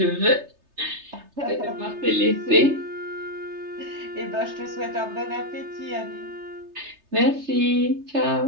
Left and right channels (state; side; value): late; left; 3.3 ms